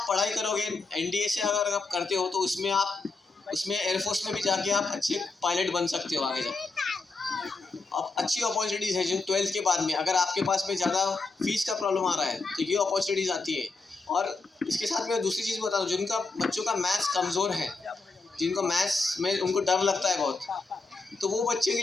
पढ़ाई करोगे, एनडीए से अगर आप करते हो, तो उसमें एयरफोर्स में भी जाके आप अच्छे पायलट बन सकते हो आगे जाके। अब अच्छी अपॉर्चुनिटीज़ है जिन 12th के बाद में, अगर आपके पास में ज़्यादा फीस का प्रॉब्लम आ रहा है तो ये अपॉर्चुनिटीज़ आती है। और इसके साथ मैं दूसरी चीज़ बता दूँ, जिनका बच्चों का मैथ्स कमज़ोर है, जिनको मैथ्स में उनको डर लगता है बहुत, तो वो बच्चे के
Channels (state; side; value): quieter; right; 3.8 dB